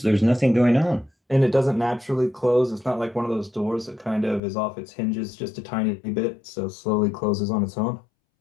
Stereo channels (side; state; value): right; drops out; at 4.4 s